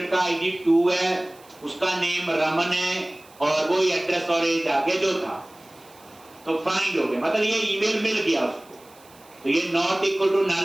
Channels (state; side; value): noise; right; hiss, 26 dB below the sound